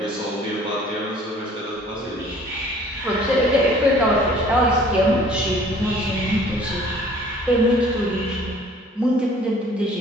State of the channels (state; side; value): normal; both; correlation 0.53